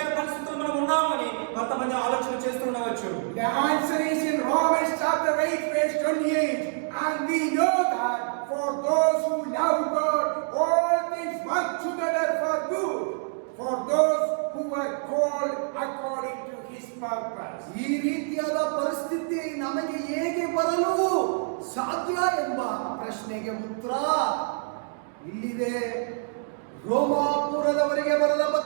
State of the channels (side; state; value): left; silent; 60 dB below the other